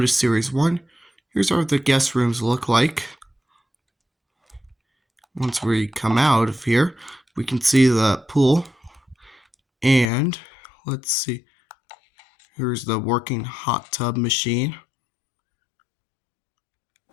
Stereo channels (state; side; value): drops out; right; at 10.1 s